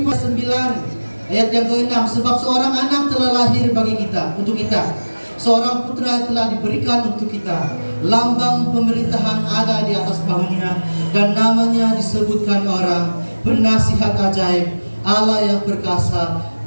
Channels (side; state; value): both; inverted; correlation -1.00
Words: 9 ayat yang ke-6. Sebab seorang anak telah lahir bagi kita, untuk kita. Seorang putra telah diberikan untuk kita. Lambang pemerintahan ada di atas bahunya, dan namanya disebutkan orang Penasihat Ajaib, Allah yang perkasa,